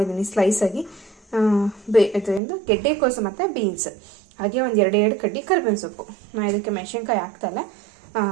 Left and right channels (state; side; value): drops out; left; at 2.4 s